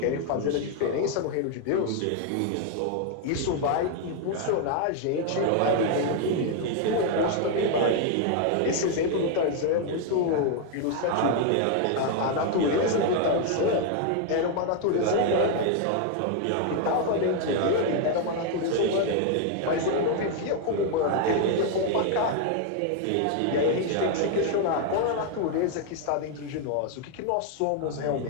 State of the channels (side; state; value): both; different; correlation 0.00